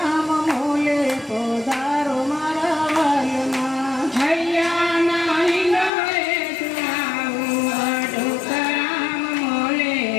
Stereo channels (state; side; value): drops out; right; at 5.9 s